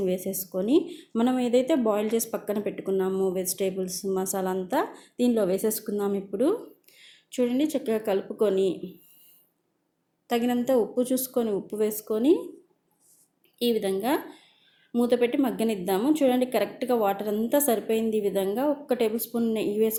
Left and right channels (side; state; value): both; identical; correlation 1.00